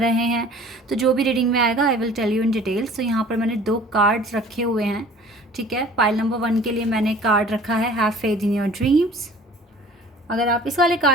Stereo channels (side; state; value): both; normal; correlation 0.48